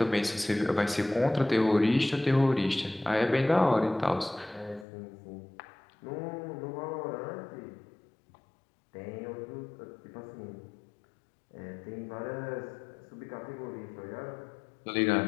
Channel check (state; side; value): drops out; right; at 4.9 s